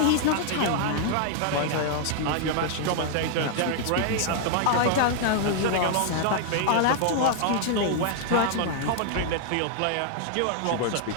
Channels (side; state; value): both; different; correlation 0.00